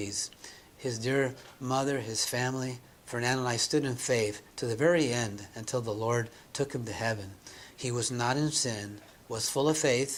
His dear mother, his family, Fernando and I stood in faith to the very end until the Lord took him to heaven. He was not in sin, was full of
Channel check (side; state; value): both; identical; correlation 1.00